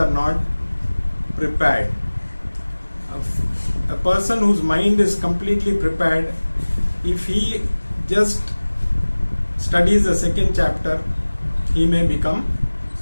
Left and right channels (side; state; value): both; inverted; correlation -1.00